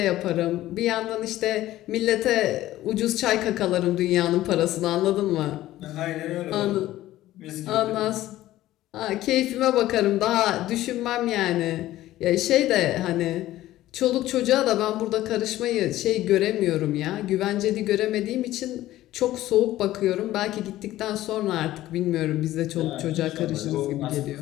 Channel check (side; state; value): right; quieter; 15.0 dB